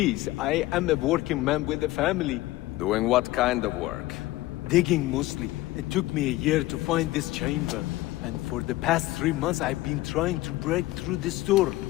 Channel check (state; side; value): quieter; right; 17.7 dB